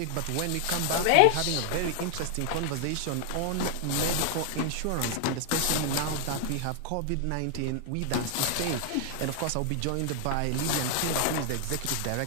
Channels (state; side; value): different; both; correlation 0.00